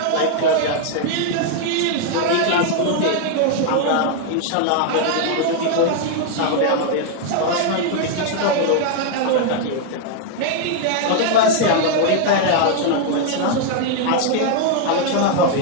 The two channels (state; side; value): different; both; correlation 0.00